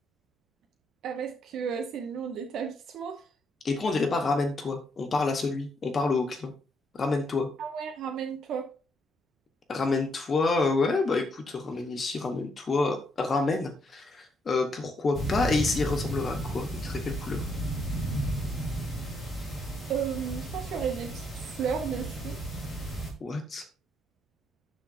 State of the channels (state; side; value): normal; both; correlation 0.75